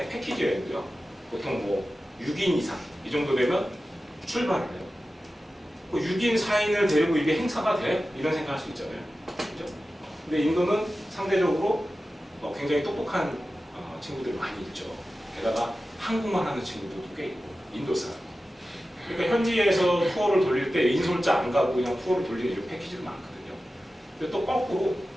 패키지 여행도요. 보통 뭐 6인 이상 이 정도 되면 출발을 해요. 6인, 4인을 데리고 이게 행사가 돼? 이런 생각할 수 있잖아요. 그죠? 근데 인도는 상대적으로 굉장히 똑똑한 친구들이 많이 있죠. 게다가 한국말 하는 친구들도 꽤 있고, 인도 사람. 그러니까 현지에서 투어를 돌릴 때 인솔자 안 가고 그냥 투어를 돌리는 이런 패키지도 많거든요. 근데 또 거꾸로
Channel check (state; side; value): normal; both; correlation 0.94